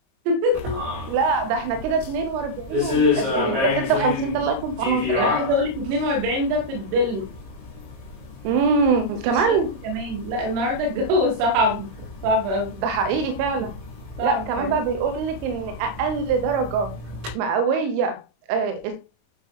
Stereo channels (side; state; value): left; late; 26 ms